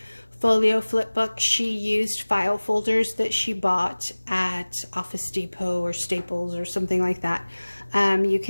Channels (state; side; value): inverted; both; correlation -1.00